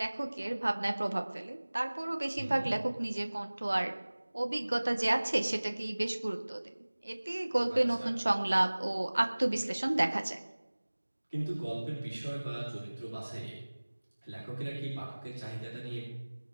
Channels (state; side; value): inverted; both; correlation -1.00